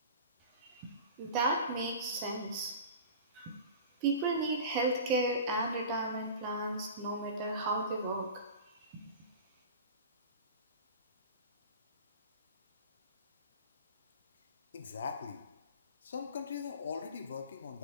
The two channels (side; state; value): both; inverted; correlation -0.35